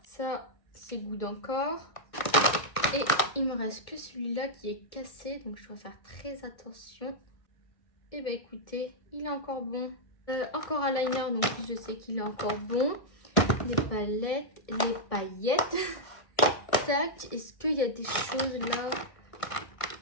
Ça, c'est good encore. Et il me reste que celui-là qui est cassé. Donc, je dois faire très attention. Et bah, écoutez, il est encore bon. Encore un liner, donc je sais qu'il est encore bon. Les palettes, les paillettes. Tac, est-ce qu'il y a des choses là?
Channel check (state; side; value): late; right; 1.6 ms